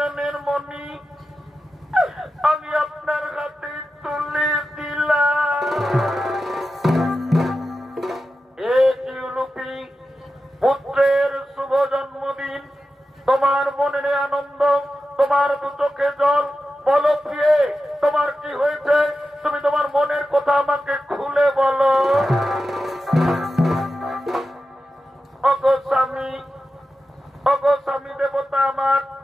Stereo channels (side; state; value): both; normal; correlation 0.92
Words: মণি আমি আপনার হাতে তুলে দিলাম। পুত্রের শুভ জন্মদিন, তোমার মনে নেই আনন্দ, তোমার দু চোখে জল। বলো প্রিয়ে, তোমার কি হয়েছে? তুমি তোমার মনের কথা আমাকে খুলে বলো। ওগো স্বামী দেবতা আমার,